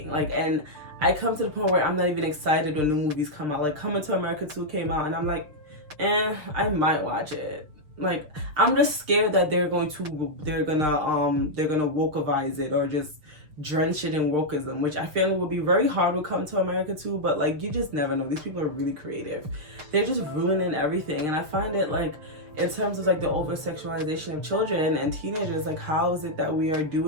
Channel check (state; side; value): late; left; 6.6 ms